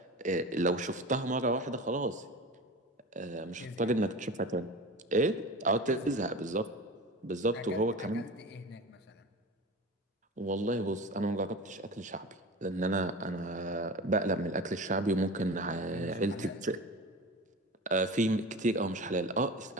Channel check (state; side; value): normal; both; correlation 0.33